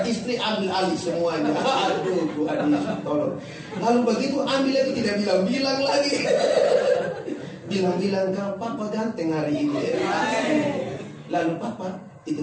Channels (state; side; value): identical; both; correlation 1.00